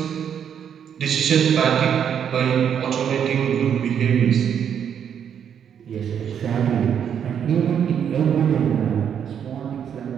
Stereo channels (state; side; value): quieter; left; 8.4 dB